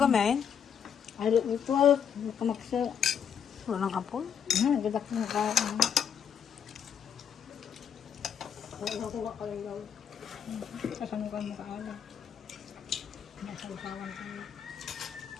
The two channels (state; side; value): quieter; right; 8.0 dB